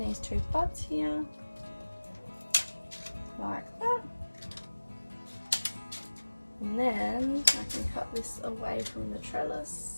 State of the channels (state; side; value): inverted; both; correlation -1.00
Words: two buds here, like that. And then I can cut this away from the